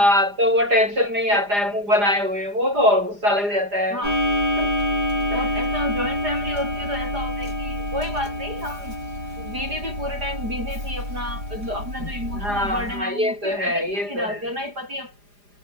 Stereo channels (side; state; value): left; late; 4.9 ms